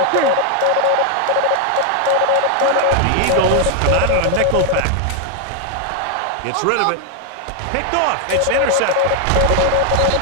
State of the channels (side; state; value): both; different; correlation 0.00